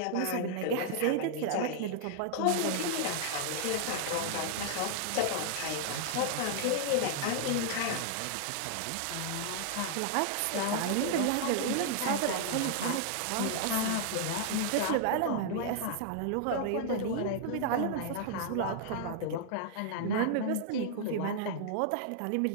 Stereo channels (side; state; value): both; different; correlation -0.01